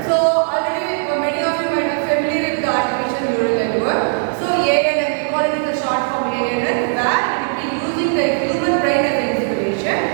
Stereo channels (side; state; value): left; silent; 57 dB below the other